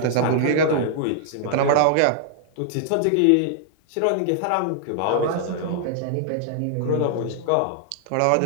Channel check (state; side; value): different; both; correlation -0.01